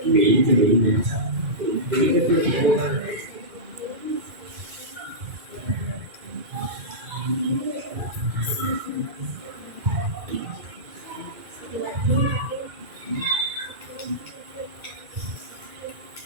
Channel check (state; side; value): late; left; 2.4 ms